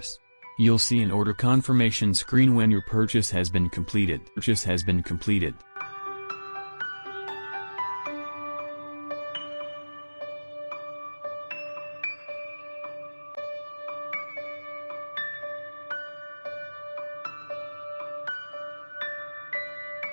You'll see an order confirmation screen when your purchase has been completed.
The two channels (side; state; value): both; inverted; correlation -1.00